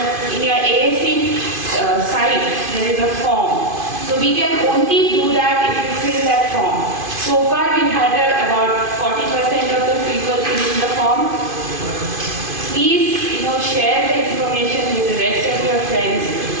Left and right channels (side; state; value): left; late; 2.5 ms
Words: In your AAC site, there is a form. So we can only do that if you fill that form. So far, we've had about 40% of the people filling the form. Please, share the information with the rest of your friends